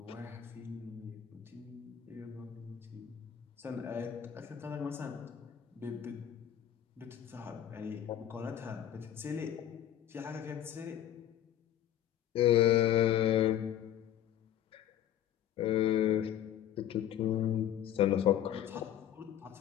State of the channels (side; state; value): right; quieter; 11.0 dB